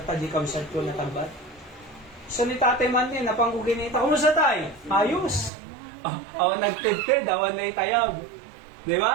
pa di kamsat ko na tagbat. So ni tatay man niya, napangko ginita. Kumusta tay? Ayos. Awan nagtid-tid, awan na itayag. Di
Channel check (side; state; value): left; drops out; at 5.5 s